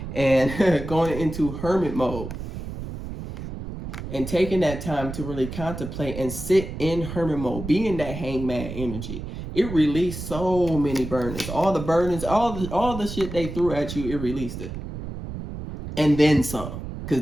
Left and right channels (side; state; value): right; noise; rumble, 8 dB below the sound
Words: And going into hermit mode. And taking that time to really contemplate and sit in hermit mode. Be in that hangman energy. It released so many burdens. All the burdens, all the shit they threw at you, it released it. And then some.